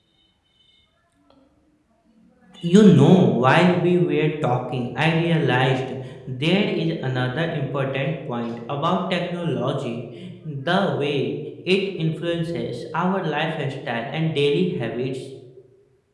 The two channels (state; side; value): identical; both; correlation 1.00